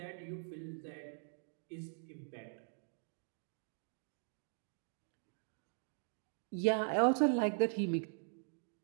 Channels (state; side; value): silent; left; digital silence